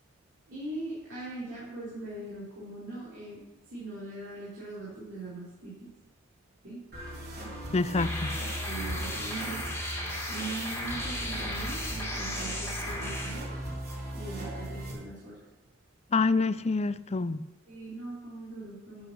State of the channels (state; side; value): normal; both; correlation 0.49